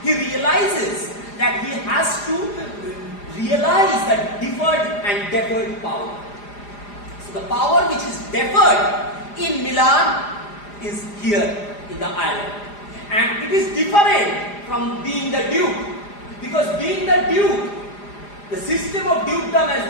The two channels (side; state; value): right; late; 4.9 ms